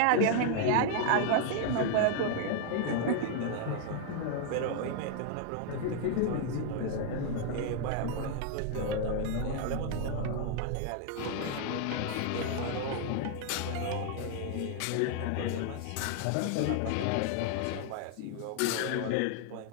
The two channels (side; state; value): both; different; correlation 0.00